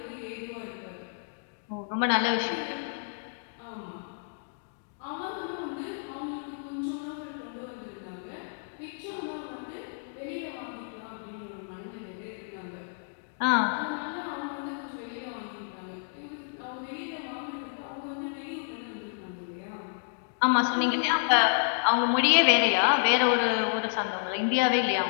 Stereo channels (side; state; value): right; silent; digital silence